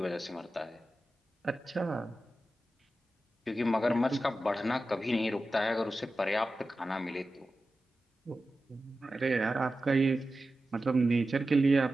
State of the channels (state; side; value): normal; both; correlation 0.93